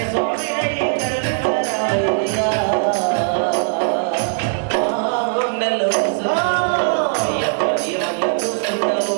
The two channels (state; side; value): silent; left; digital silence